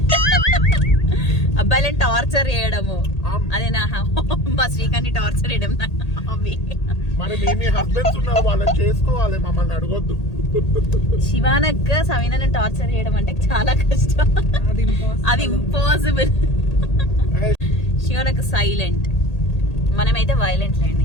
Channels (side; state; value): right; late; 1.8 ms